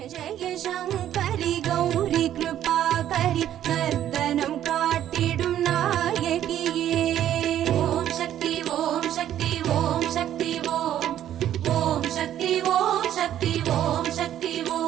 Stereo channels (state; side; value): quieter; left; 11.3 dB